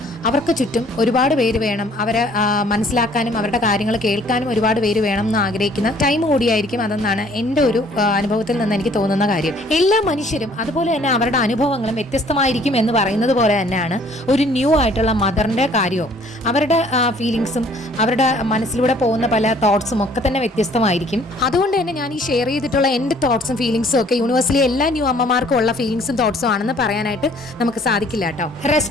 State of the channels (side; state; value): both; normal; correlation 0.58